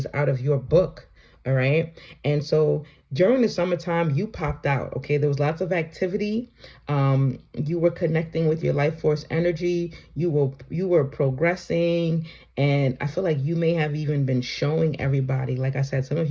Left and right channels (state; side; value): identical; both; correlation 1.00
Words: out of your book. All right. And so during the summertime, you popped out. Okay. There was lots of activity. You were connecting with your life force energy. You were progressing. And I feel like you may have even been showing everybody. Like I said, some of